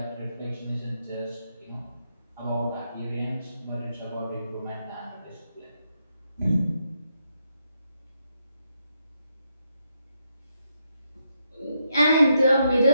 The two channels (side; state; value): both; inverted; correlation -0.81